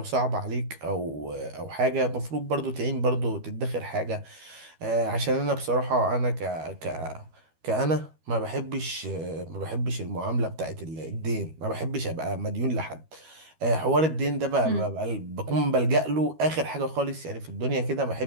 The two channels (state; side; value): late; left; 13 ms